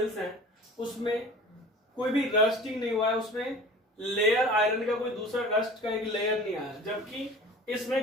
हैं उसमें कोई भी रस्टिंग नहीं हुआ है, उसमें लेयर आयरन का कोई दूसरा रस्ट का एक लेयर नहीं आया, जबकि इसमें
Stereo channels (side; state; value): both; normal; correlation 0.41